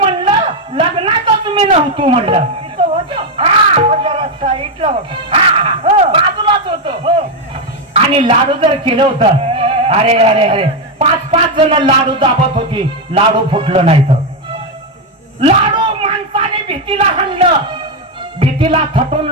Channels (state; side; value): normal; both; correlation 0.05